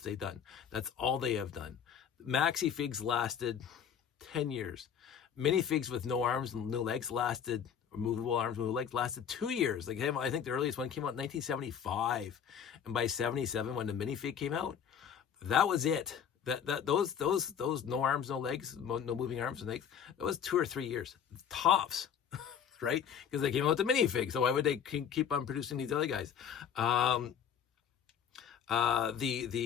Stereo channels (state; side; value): quieter; right; 8.1 dB